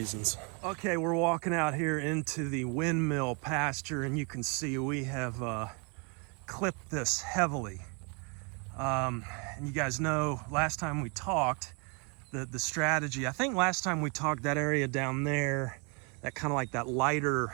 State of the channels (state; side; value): quieter; left; 33.1 dB